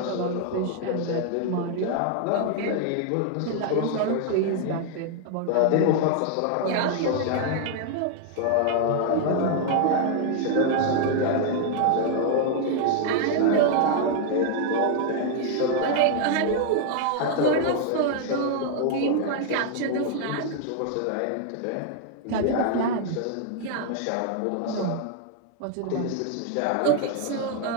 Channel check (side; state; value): both; different; correlation 0.00